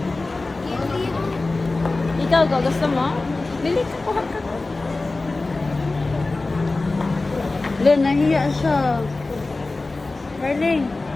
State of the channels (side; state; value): right; quieter; 3.3 dB